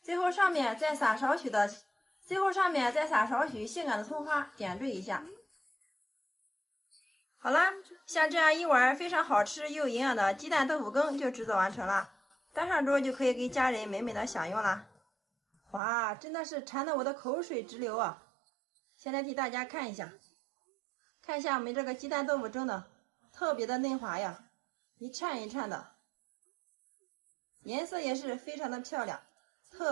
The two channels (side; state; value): left; drops out; at 15.8 s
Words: 最后上面再撒少许性感的葱花，点缀一下。好啦，像这样一碗非常好吃又营养的鸡蛋豆腐羹就制作完成了，端上桌就可以给家人美美的享用啦。哇，真的是馋得我的口水直流啊！现在替大家看一下我们这个鸡蛋豆腐蒸的特别的嫩滑呀，一颤一颤的，颜色也是非常的漂亮，